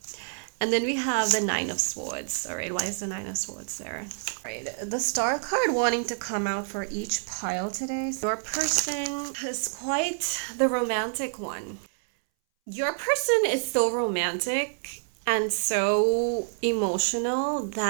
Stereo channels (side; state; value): left; silent; 60 dB below the other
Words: And then we have the 9 of Swords. All right, why is the 9 of Swords there? All right, the Star card wanting to come out for each pile today. Your person is quite the romantic one. Your person is so romantic and so emotional